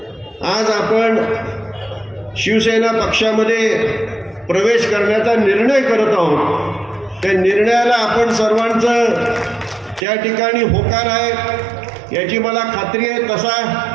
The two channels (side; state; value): left; drops out; at 10.1 s